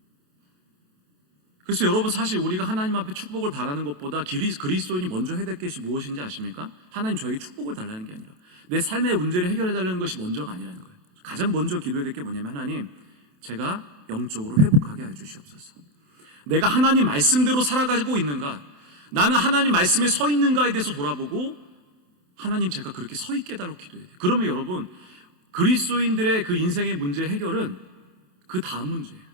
그래서 여러분, 사실 우리가 하나님 앞에 축복을 바라는 것보다 그리스도인이 먼저 해야 될 것이 무엇인지 아십니까? 하나님, 저에게 축복을 달라는 게 아니라 내 삶의 문제를 해결해 달라는 것이 먼저가 아니라는 거예요. 가장 먼저 기도해야 될 게 뭐냐면, 하나님, 제가 영적으로 회복하게 하여 주시옵소서. 내가 하나님 말씀대로 살아가고 있는가, 나는 하나님 말씀에 서 있는가에 대해서 돌아보고, 하나님, 제가 그렇게 서 있게 해달라고 기도해야 돼요. 그러면 여러분, 그리스도인들의 그 인생의 문제 해결은 그 다음 문제예요.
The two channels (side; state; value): left; late; 27 ms